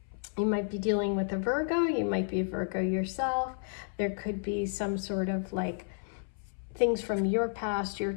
you might be dealing with a Virgo. You might be a Virgo yourself. There could be some sort of like things from your past, your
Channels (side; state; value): right; silent; 57 dB below the other